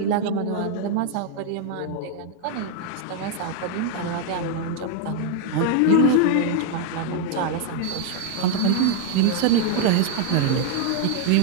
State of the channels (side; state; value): both; different; correlation 0.00